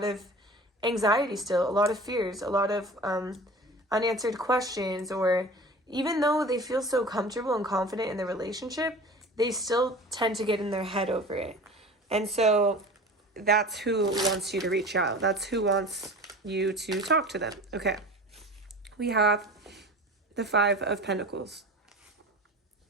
of anxiety still, a lot of fears, a lot of unanswered questions, or even though they feel so comfortable and confident in the relationship, they still tend to get in their head over it. And so that's who wants you to reach out. That's who wants you to talk to them. Okay. We have the Five of Pentacles.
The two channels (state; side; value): normal; both; correlation 0.38